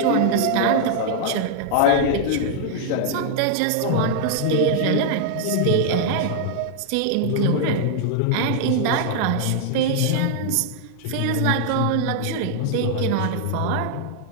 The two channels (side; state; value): both; different; correlation -0.01